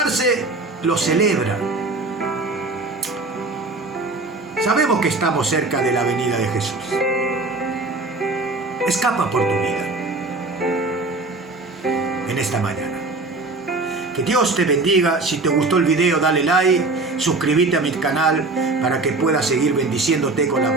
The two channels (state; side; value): quieter; left; 3.3 dB